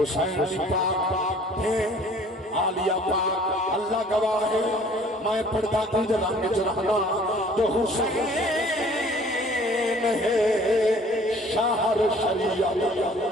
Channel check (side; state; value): both; normal; correlation 0.53